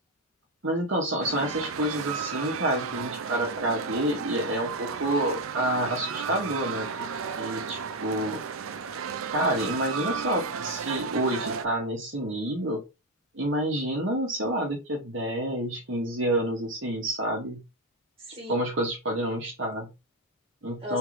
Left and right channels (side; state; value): both; normal; correlation 0.07